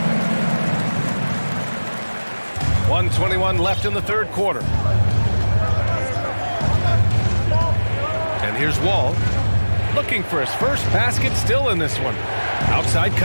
1:21 left in the third quarter. And here's Wall. Looking for his first basket still in this one. Outside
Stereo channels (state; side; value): inverted; both; correlation -1.00